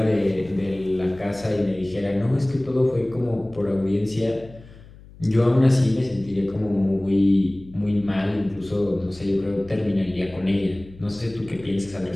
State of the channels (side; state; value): left; noise; hum, 21 dB below the sound